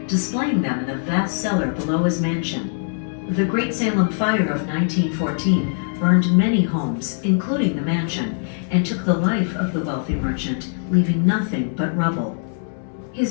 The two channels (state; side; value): silent; right; digital silence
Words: displaying them in the vast cellar below his mansion. The Great Salem Fire of 1914 burned many homes, including the mansion, and took the life of the wealthy merchant, leaving nothing but rubble.